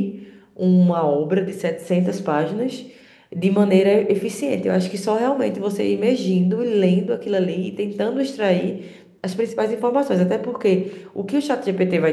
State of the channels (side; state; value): both; identical; correlation 1.00